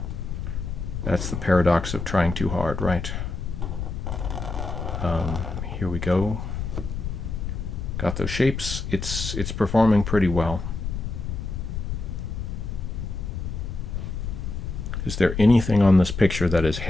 the paradox of trying too hard, right? Here we go. Got those shapes. It's performing pretty well. Is there anything on this picture that is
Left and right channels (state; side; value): noise; left; rumble, 4 dB below the sound